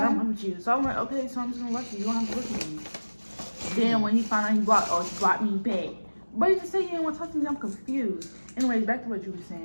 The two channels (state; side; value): inverted; both; correlation -1.00